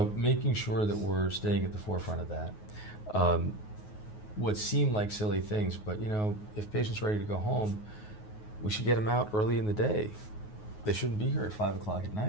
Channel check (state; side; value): late; right; 9.4 ms